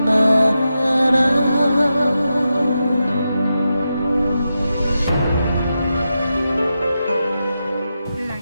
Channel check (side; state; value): both; inverted; correlation -0.89